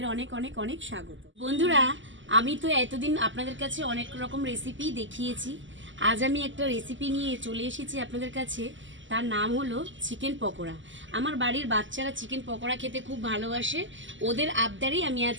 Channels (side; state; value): left; late; 0.55 ms